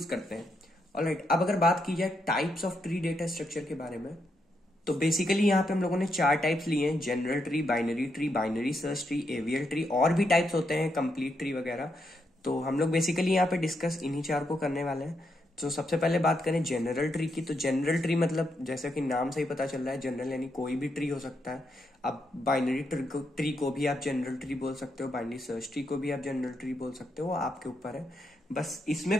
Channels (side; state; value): both; normal; correlation 0.80